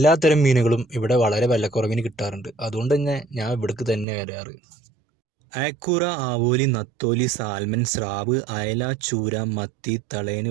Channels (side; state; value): left; drops out; at 4.0 s